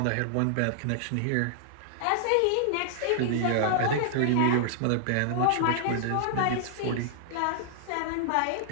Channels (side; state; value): both; different; correlation -0.01